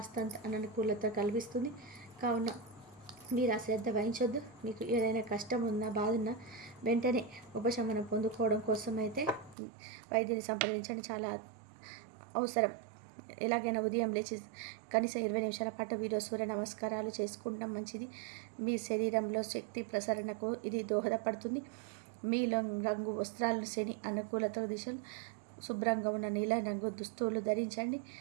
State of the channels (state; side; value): drops out; left; at 9.6 s